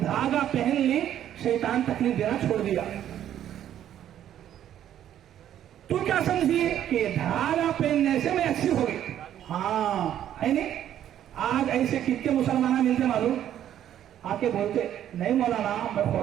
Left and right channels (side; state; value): left; quieter; 10.9 dB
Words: पहन ली, शैतान तकलीफ देना छोड़ दिया। तू क्या समझी कि धागा पहनने से मैं अच्छी हो गई? हाँ है नहीं? आज ऐसे कितने मुसलमान मिलते मालूम, आके बोलते, नहीं मौलाना मैं